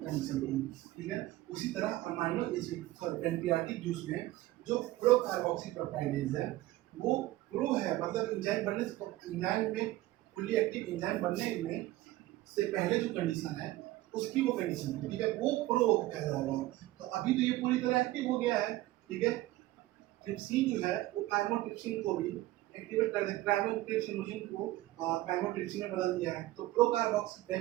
थी, ठीक है। उसी तरह amino acid sorry pancreatic juice में जो प्रो कार्बोक्सी पेप्टाइडेज है वो प्रो है, मतलब एंजाइम बनने से, एंजाइम में फुल्ली एक्टिव एंजाइम बनने में से पहले जो कंडीशन है उसकी वो कंडीशन है, ठीक है, वो प्रो कहलाएगा। तो अभी तो ये पूरी तरह एक्टिव हो गया है, ठीक है। ट्रिप्सिन जो है वो काइमोट्रिप्सिन को भी एक्टिवेट कर दे, क्राइमोट्रिप्सिनोजन को क्राइमोट्रिप्सिन में बदल दिया है, तो प्रो कार्बोक्सी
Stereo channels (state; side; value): quieter; left; 16.8 dB